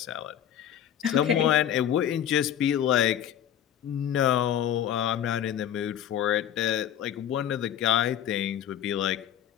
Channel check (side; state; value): right; quieter; 10.2 dB